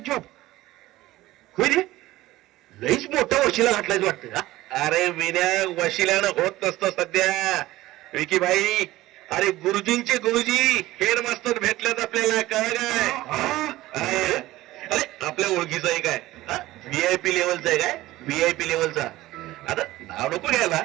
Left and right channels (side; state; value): left; quieter; 17.0 dB